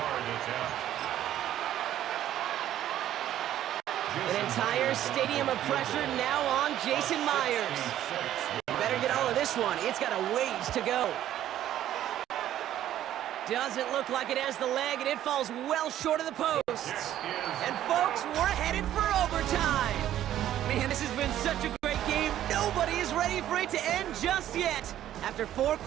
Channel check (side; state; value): left; quieter; 12.1 dB